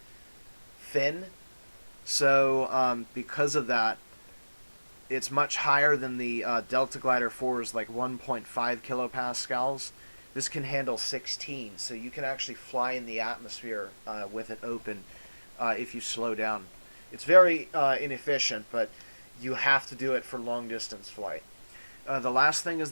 fin. So because of that, it's much higher than the Delta Glider 4's like 1.5 kilopascals. This can handle 16, so you can actually fly in the atmosphere with it open if you slow down. It's very inefficient, but you have to do it for long distance flight. The last thing is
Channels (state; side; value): inverted; both; correlation -1.00